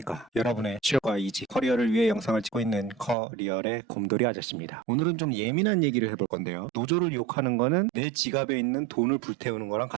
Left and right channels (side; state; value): left; drops out; at 3.2 s